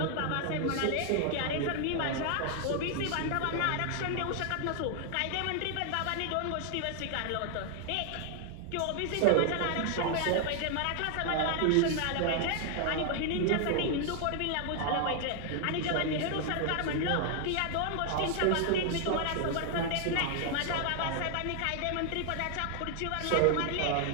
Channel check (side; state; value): both; different; correlation 0.00